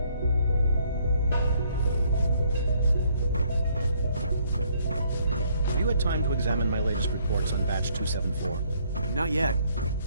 Have you had time to examine my latest reports on Batch 274? Not yet.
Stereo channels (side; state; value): both; inverted; correlation -0.66